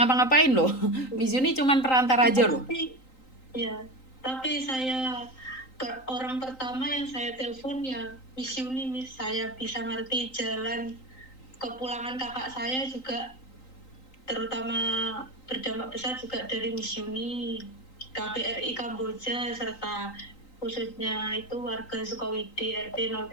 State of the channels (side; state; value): right; late; 3.9 ms